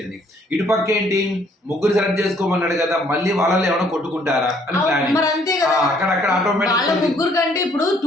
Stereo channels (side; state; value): both; normal; correlation 0.64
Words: ఇటుపక్క ఏంటి ముగ్గురు సెలెక్ట్ చేసుకోమన్నాడు కదా, మళ్ళీ వాళ్ళలో ఏమైనా కొట్టుకుంటారా అని ప్లానింగ్. అక్కడక్కడ ఆటోమేటిక్ ముగ్గురు కంటే ఇప్పుడు